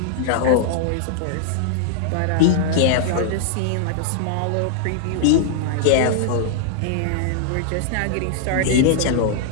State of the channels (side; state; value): both; different; correlation -0.01